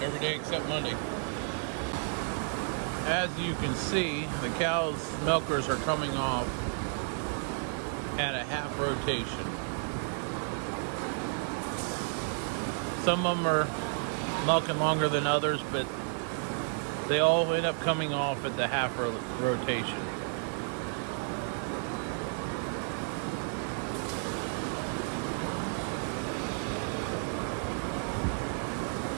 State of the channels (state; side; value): silent; left; 56 dB below the other